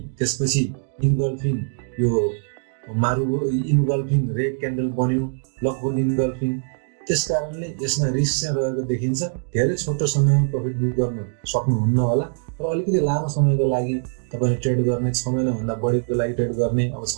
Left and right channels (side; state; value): left; silent; digital silence